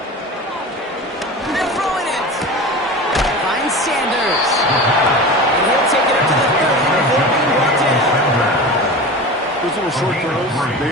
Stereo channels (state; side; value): normal; both; correlation 0.32